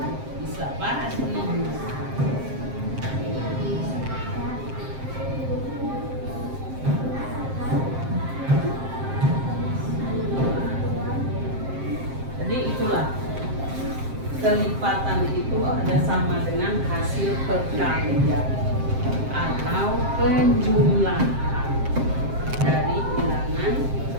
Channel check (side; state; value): left; late; 7.6 ms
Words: Bisa pasti. Jadi itulah. Kelipatan itu ada sama dengan hasil perkalian atau penjumlahan dari bilangan